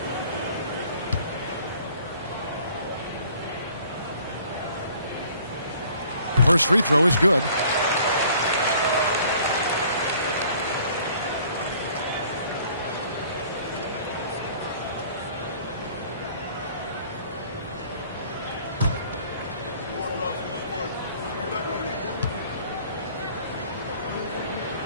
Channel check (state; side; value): inverted; both; correlation -0.55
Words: First free throw is good.